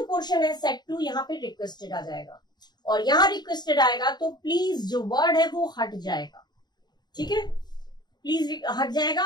पोर्शन है सेट टू, यहाँ पे रिक्वेस्टेड आ जाएगा। और यहाँ रिक्वेस्टेड आएगा तो प्लीज जो वर्ड है वो हट जाएगा, ठीक है, प्लीज हट जाएगा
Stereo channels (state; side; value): late; right; 0.20 ms